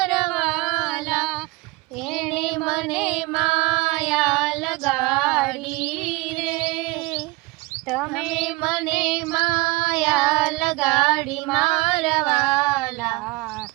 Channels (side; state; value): left; quieter; 23.6 dB